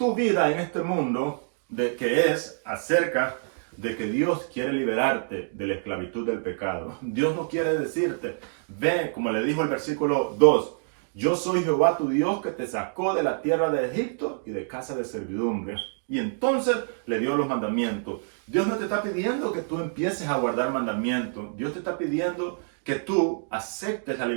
vida en este mundo, que es acerca de que Dios quiere liberarte de la esclavitud del pecado. Dios no quiere decirte, ve, como le dijo el versículo 2, yo soy Jehová tu Dios que te sacó de la tierra de Egipto y de casa de servidumbre. Y entonces le dio los mandamientos. Dios no te está pidiendo que tú empieces a guardar mandamientos. Dios te está pidiendo que tú aceptes la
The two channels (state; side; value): silent; left; digital silence